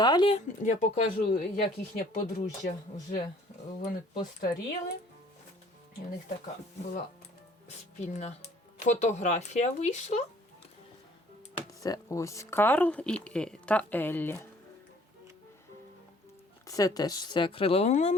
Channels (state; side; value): normal; both; correlation 0.56